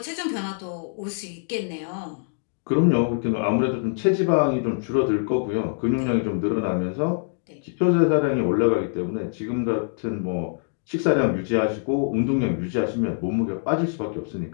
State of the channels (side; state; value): right; silent; digital silence